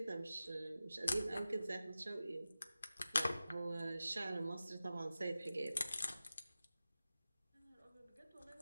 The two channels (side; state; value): both; inverted; correlation -0.94